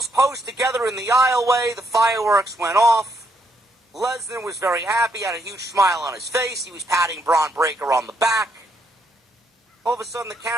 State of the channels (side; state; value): both; normal; correlation 0.74